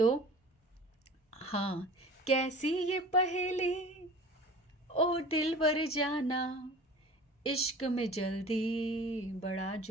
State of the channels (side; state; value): both; normal; correlation 0.40